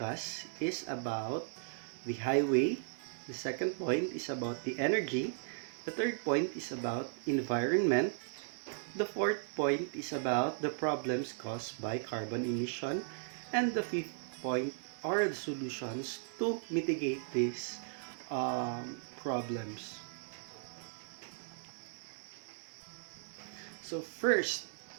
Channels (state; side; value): silent; left; digital silence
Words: is about the highway. The second point is about the energy. The third point is about environment. The fourth point is about the problems caused by carbon emission. And the fifth point are the solutions to mitigate these problems. So first,